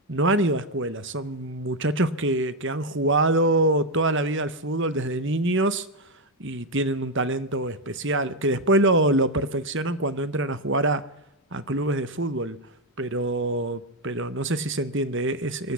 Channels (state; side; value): normal; both; correlation 0.06